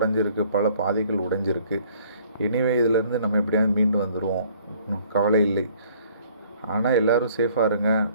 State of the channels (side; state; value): both; inverted; correlation -0.59